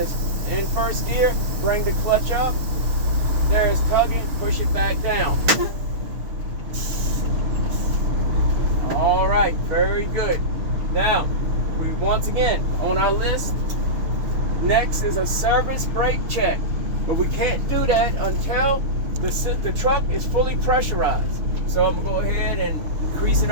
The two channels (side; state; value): left; late; 6.5 ms